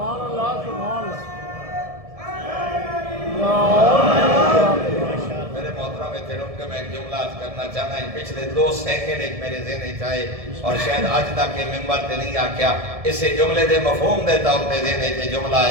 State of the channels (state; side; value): late; left; 1.7 ms